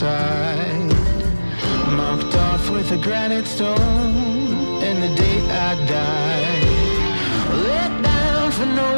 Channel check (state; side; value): inverted; both; correlation -1.00